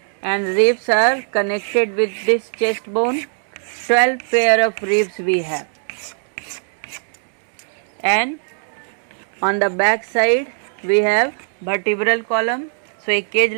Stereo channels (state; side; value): silent; left; digital silence